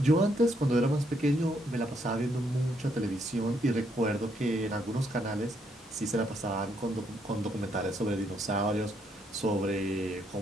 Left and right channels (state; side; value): normal; both; correlation 0.74